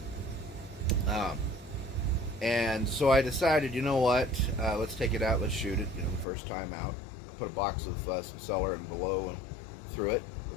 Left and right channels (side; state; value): right; drops out; at 6.2 s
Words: And so I decided, you know what, let's take it out, let's shoot it, you know, the first time out. I put a box of some Cellar and Below and through it, or